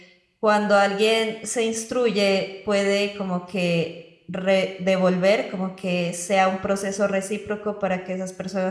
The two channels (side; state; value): both; identical; correlation 1.00